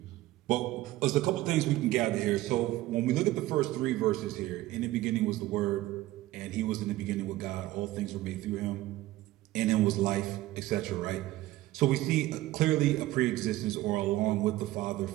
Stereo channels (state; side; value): quieter; left; 16.6 dB